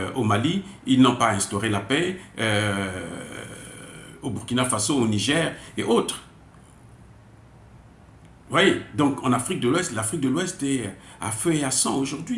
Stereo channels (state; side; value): identical; both; correlation 1.00